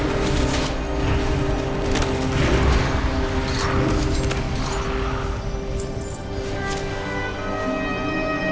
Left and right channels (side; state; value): both; identical; correlation 1.00